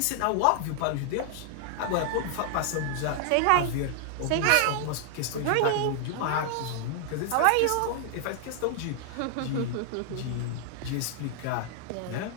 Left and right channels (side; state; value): both; different; correlation 0.00